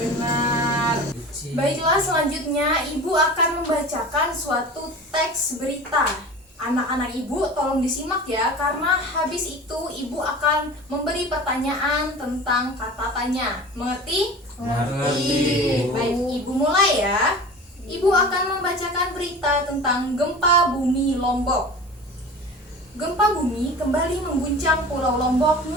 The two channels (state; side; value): normal; both; correlation 0.36